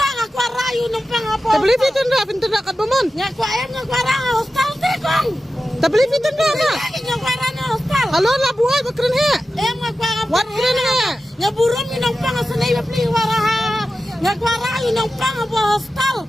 aku rayu nang pang apa. Tapi lebih tenang kat bamon. Ngaku ayam ngaku arang hostal tekong. Tapi lebih tenang ah. Ngaku arang hostal. Halo lah buai bakren he. Ngaku arang. Wat keren he. Ngaburum nang pang senai beli waraha. Ngaku arayu nang pang apa hostal.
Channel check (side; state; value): both; normal; correlation 0.93